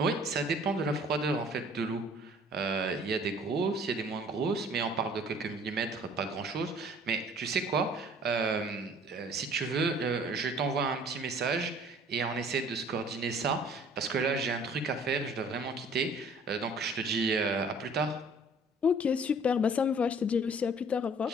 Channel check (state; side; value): normal; both; correlation 0.53